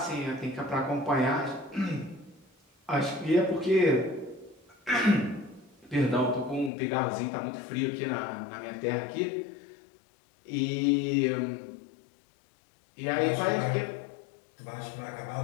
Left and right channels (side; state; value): right; drops out; at 6.7 s